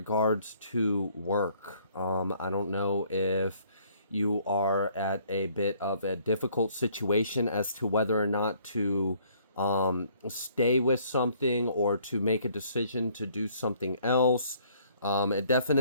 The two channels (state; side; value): inverted; both; correlation -0.62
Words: to work. I don't know if you are at a bit of a difficult situation as to whether or not to stay with something or to make a decision to do something else. It